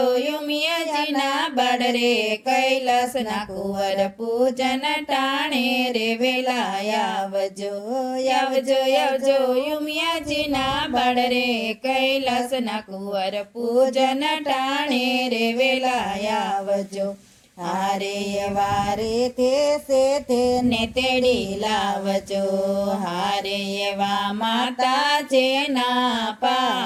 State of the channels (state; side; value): identical; both; correlation 1.00